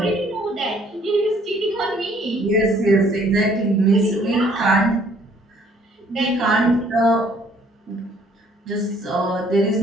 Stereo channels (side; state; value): both; normal; correlation 0.61